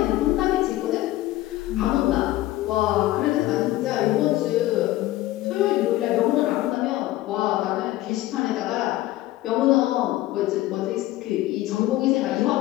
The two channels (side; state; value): right; quieter; 16.2 dB